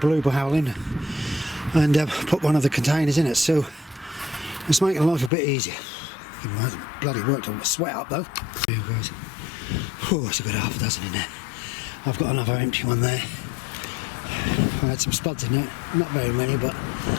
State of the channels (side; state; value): right; drops out; at 5.3 s